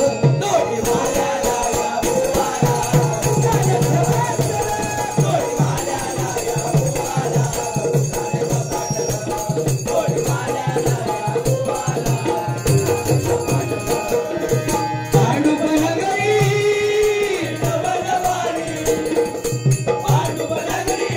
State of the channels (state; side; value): identical; both; correlation 1.00